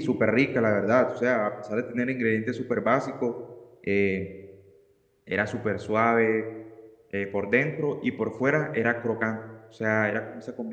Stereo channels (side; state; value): both; identical; correlation 1.00